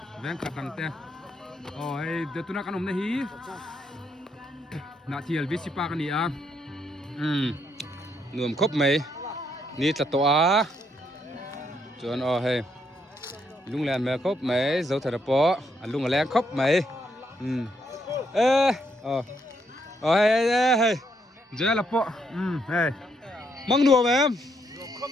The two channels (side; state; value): both; normal; correlation 0.75